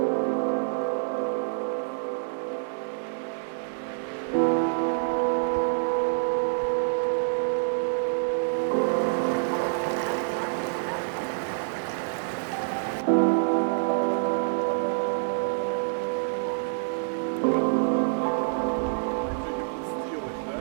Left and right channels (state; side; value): silent; left; digital silence